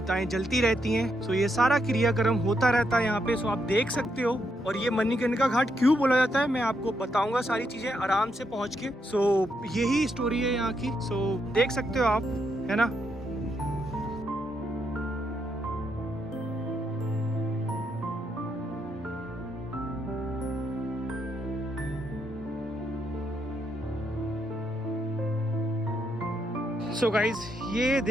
जलती रहती हैं। सो ये सारा क्रियाक्रम होता रहता है यहाँ पे। सो आप देख सकते हो। और ये मणिकर्णिका घाट क्यों बोला जाता है मैं आपको बताऊंगा सारी चीजें आराम से पहुंच के। सो यही स्टोरी है यहाँ की। सो देख सकते हो आप, है ना। सो गाइज ये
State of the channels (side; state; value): both; normal; correlation 0.79